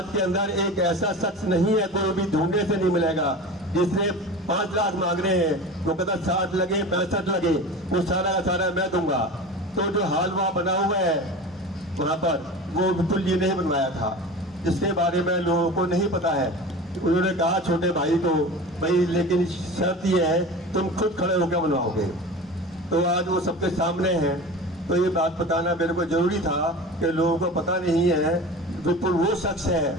के अंदर एक ऐसा शख्स नहीं है, कोई भी ढूंढने से नहीं मिलेगा जिसने 5 लाख मांग रहे हैं, वो कहता 60 लगे 65 लगे, वो सारा का सारा मैं दूंगा। तो जो हाल वहाँ बना हुआ है वहाँ पर, वो विपुल जी ने ही बनवाया था, जिसके बारे में लोगों को नहीं पता है। उन्होंने कहा छोटे भाई को, भाई लेकिन शर्त ये है तुम खुद खड़े होकर बनवाओगे। तो आज वो सबके सामने है। तो ये बात बताना मेरे को जरूरी था कि लोगों को पता नहीं है। विपुल वो शख्स है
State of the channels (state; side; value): normal; both; correlation 0.33